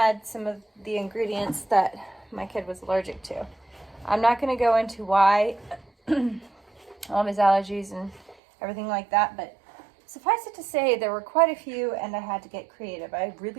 some of the ingredients that my kid was allergic to. I'm not going to go into why, all of his allergies and everything like that, but suffice it to say, there were quite a few, and I had to get creative. I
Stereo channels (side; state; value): left; drops out; at 8.3 s